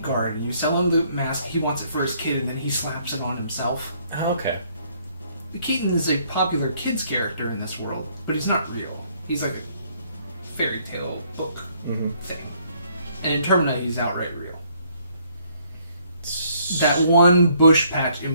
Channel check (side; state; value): both; inverted; correlation -0.66